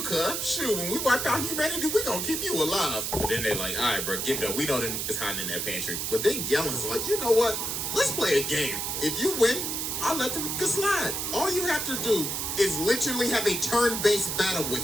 cuz. Shoot, when we wipe out humanity, we gonna keep you alive. But then they like, all right, bro, give it up. We know that niggas hiding in that pantry. But then Galen's like, you know what? Let's play a game. If you win, I'll let the nigga slide. All you have to do is literally have a turn-based battle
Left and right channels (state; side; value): noise; right; hiss, 2 dB below the sound